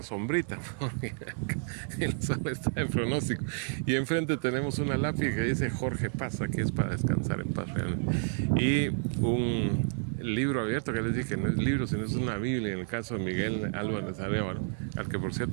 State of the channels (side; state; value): left; silent; 58 dB below the other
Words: sombrita, porque el sol está de pronóstico. Y enfrente tenemos una lápiz que dice Jorge Paz, aquí es para descansar en paz realmente. Y un libro abierto que les dije, no es libro, sino es una Biblia, en el caso de Miguel Álvarez Arévalo, al que por